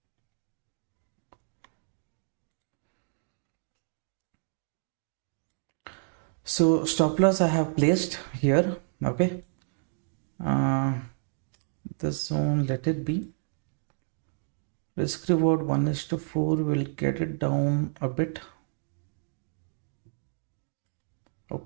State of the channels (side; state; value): left; silent; digital silence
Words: So stop loss I have placed here. Okay, this zone, let it be. Risk reward 1:4 will get it down a bit.